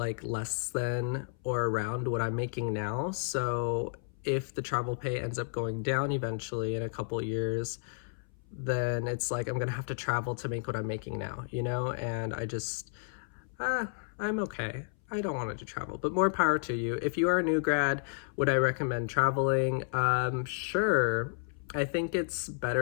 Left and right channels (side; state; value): right; silent; 56 dB below the other